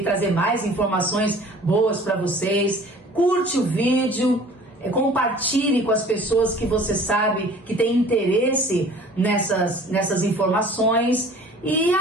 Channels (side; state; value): both; normal; correlation 0.48